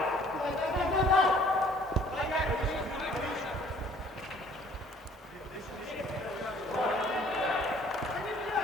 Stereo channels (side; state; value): both; normal; correlation 0.56